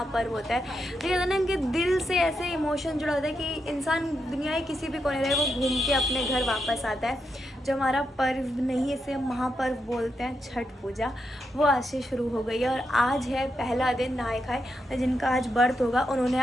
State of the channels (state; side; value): normal; both; correlation 0.84